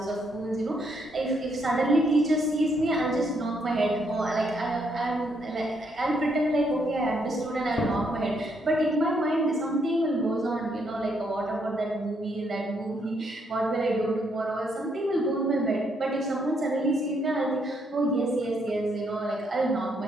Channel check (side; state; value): both; normal; correlation 0.74